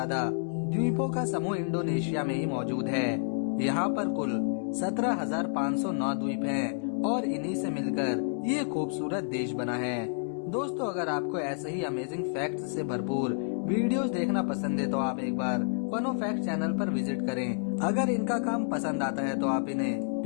द्वीपों का समूह इंडोनेशिया में ही मौजूद है। यहाँ पर कुल 17,509 द्वीप हैं और इन्हीं से मिलकर ये खूबसूरत देश बना है। दोस्तों, अगर आपको ऐसे ही अमेजिंग फैक्ट्स से भरपूर वीडियोस देखना पसंद है तो आप एक बार फनो फैक्ट चैनल पर विजिट करें। अगर इनका काम पसंद आता है तो आप इन्हें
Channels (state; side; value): silent; right; digital silence